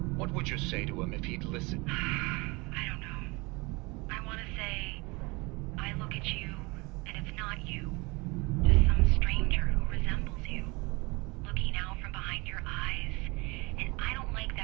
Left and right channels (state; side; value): quieter; left; 25.8 dB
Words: What would you say to him if he'd listen? I don't know. I want to say, I look at you, and it's not you. Just some stranger who resembles you. Looking out from behind your eyes. And I don't like